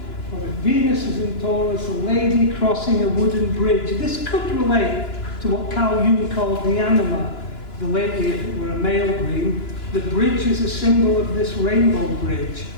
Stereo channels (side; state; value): right; late; 2.9 ms